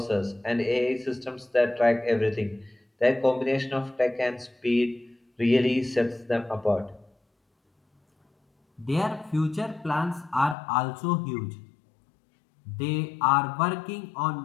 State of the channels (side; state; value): right; drops out; at 10.6 s